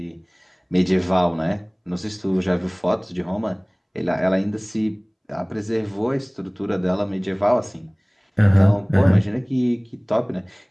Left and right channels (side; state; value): both; identical; correlation 1.00